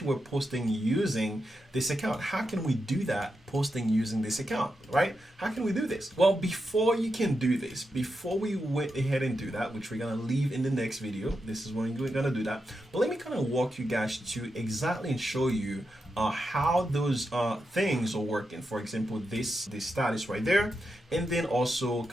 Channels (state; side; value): normal; both; correlation 0.87